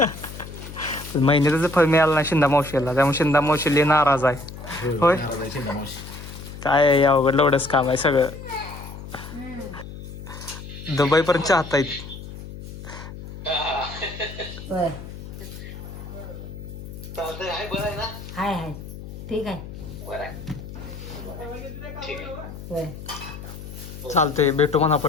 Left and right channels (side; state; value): left; noise; hum, 12 dB below the sound